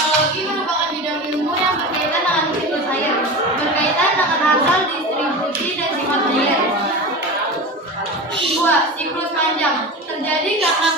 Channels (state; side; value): normal; both; correlation 0.28